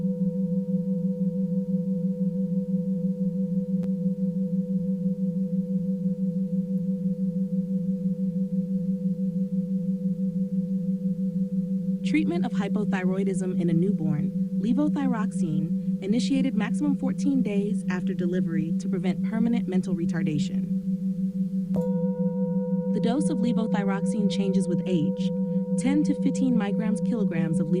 Treatment of hypothyroidism in a newborn, levothyroxine, initiated maximum 14 days after delivery to prevent permanent mental retardation. The dose of levothyroxine changes with age. 10 to 15 kilograms of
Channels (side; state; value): both; identical; correlation 1.00